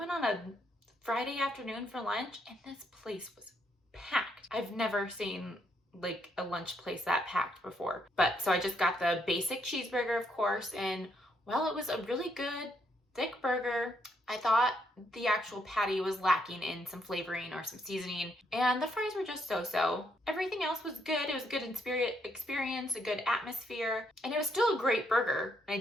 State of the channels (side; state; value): both; normal; correlation 0.75